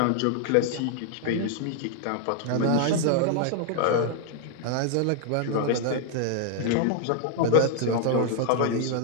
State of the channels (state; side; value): different; both; correlation 0.00